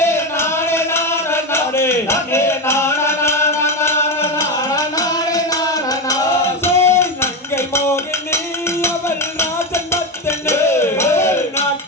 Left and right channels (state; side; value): normal; both; correlation 0.14